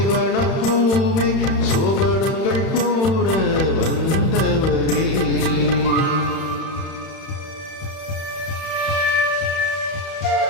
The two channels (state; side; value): late; right; 31 ms